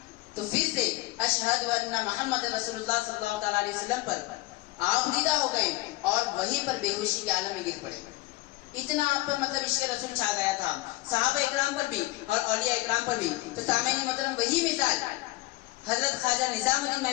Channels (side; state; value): right; quieter; 19.8 dB